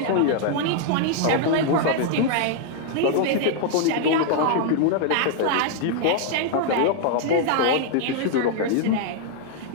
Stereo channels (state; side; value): different; both; correlation 0.00